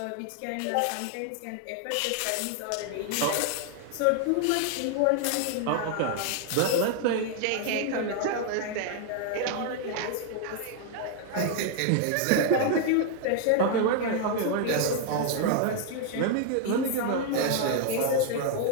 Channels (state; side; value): different; both; correlation 0.00